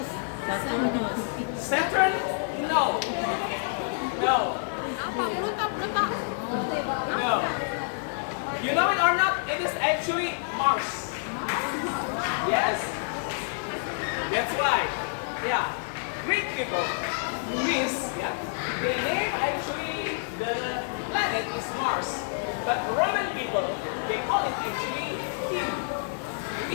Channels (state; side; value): silent; right; digital silence